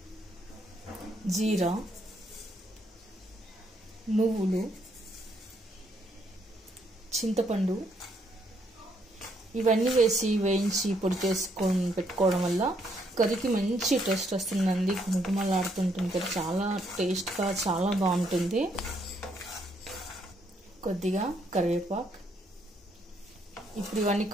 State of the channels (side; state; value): both; normal; correlation 0.72